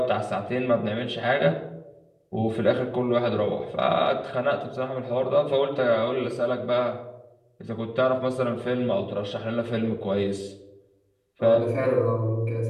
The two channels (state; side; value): identical; both; correlation 1.00